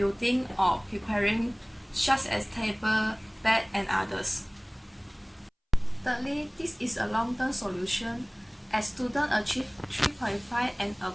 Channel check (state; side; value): identical; both; correlation 1.00